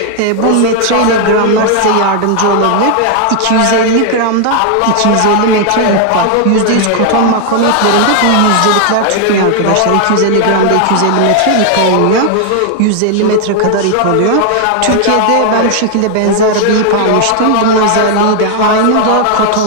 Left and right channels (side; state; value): both; different; correlation 0.00